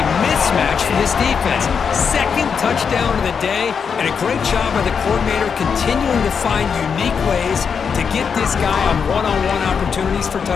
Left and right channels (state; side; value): quieter; right; 6.4 dB